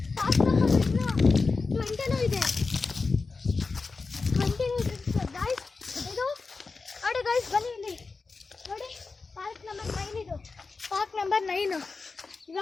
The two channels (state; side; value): quieter; right; 4.2 dB